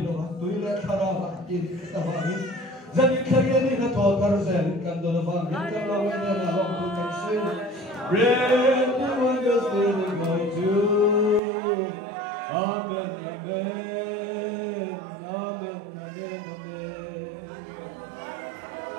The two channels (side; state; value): left; drops out; at 11.4 s